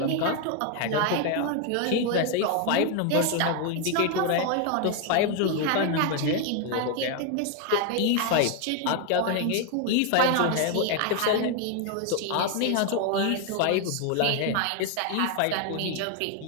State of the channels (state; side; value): different; both; correlation 0.01